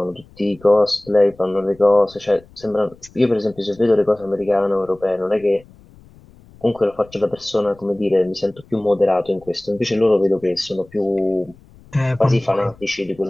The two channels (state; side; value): noise; left; rumble, 26 dB below the sound